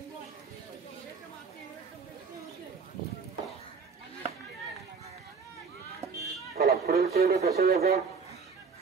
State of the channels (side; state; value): left; quieter; 5.4 dB